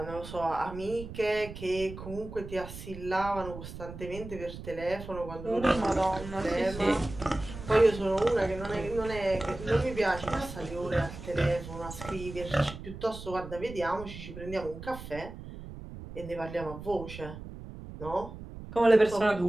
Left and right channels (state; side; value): noise; right; rumble, 12 dB below the sound